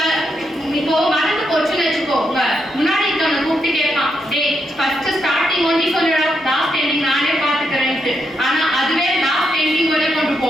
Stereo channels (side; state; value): both; normal; correlation 0.81